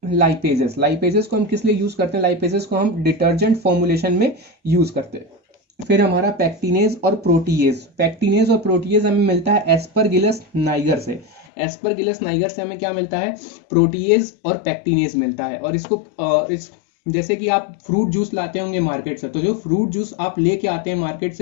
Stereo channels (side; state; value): right; drops out; at 11.5 s